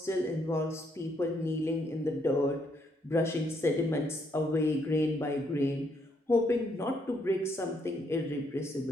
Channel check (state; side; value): normal; both; correlation 0.73